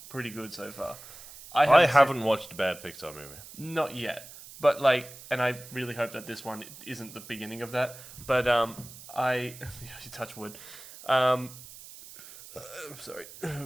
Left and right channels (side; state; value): right; noise; hiss, 17 dB below the sound